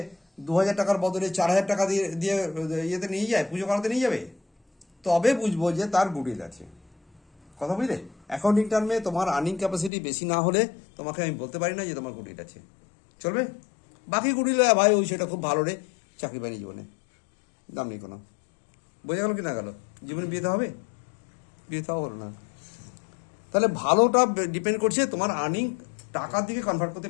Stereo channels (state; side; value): drops out; right; at 9.9 s